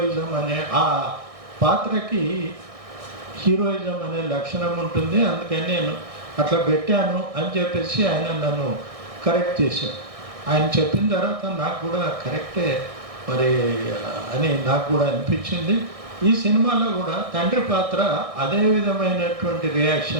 అనే ఆ పాత్రకి హీరోయిజం అనే లక్షణం ఉంటుంది. అందుకని నేను అట్లా పెట్టాను అని చెప్పేసి ఆయన నన్ను కరెక్ట్ చేశాడు. ఆయన చెప్పిన తర్వాత నాకు కూడా కరెక్టే మరి అని నాకు కూడా అనిపించింది. ఈ సినిమాలో కూడా తండ్రి పాత్ర అదే విధమైనటువంటి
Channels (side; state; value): left; late; 1.6 ms